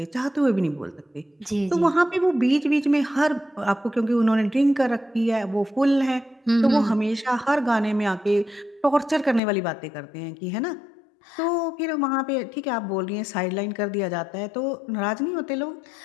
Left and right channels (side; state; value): right; drops out; at 9.4 s